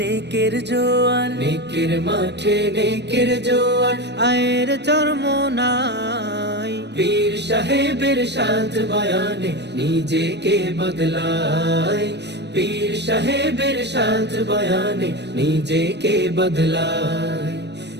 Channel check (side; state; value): left; late; 0.50 ms